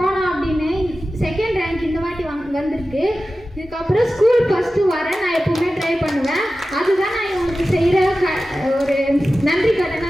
அப்படின்னு. 2nd ரேங்க் இந்த வாட்டி வந்திருக்கு. இதுக்கப்புறம் ஸ்கூல் ஃபஸ்ட்டு வரேன், நான் எப்பவுமே ட்ரை பண்ணுவேன். அதுதான் நான் இவங்களுக்கு செய்கிற ஒரு நன்றி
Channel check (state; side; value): normal; both; correlation 0.94